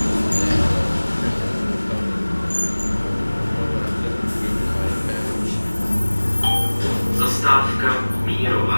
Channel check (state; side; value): inverted; both; correlation -1.00